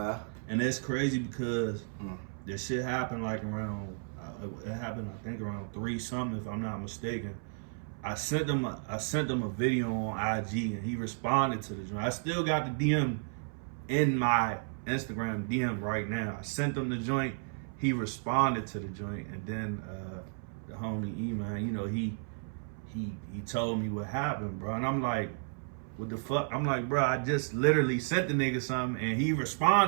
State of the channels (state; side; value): silent; left; 56 dB below the other